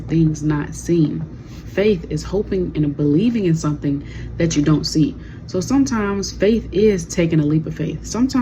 things not seen. Faith is hoping and believing in something that you don't see. So sometimes faith is taking a leap of faith.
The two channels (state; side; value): identical; both; correlation 1.00